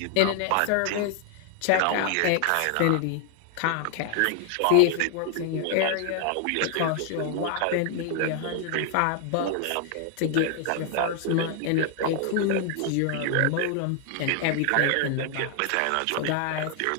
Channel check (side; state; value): both; different; correlation 0.00